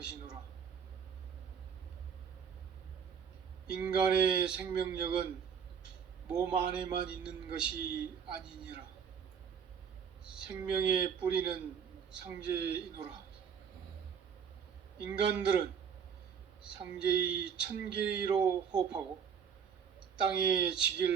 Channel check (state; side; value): quieter; left; 7.2 dB